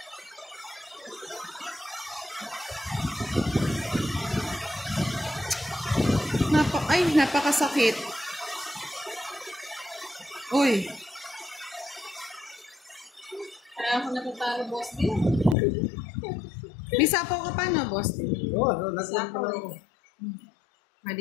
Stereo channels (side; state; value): right; drops out; at 15.6 s